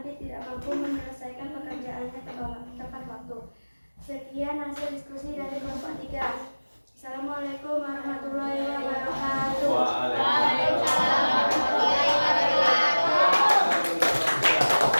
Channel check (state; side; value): inverted; both; correlation -1.00